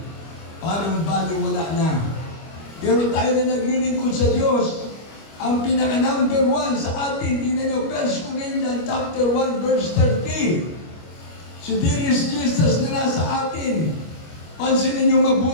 parang baliwala na. Pero tayo na naglilingkod sa Diyos, ang pinaka-number 1 sa atin, tingnan nyo, 1 Corinthians chapter 1, verse 30. Si dearest Jesus na nasa atin. Pansinin nyo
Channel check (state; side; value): late; right; 25 ms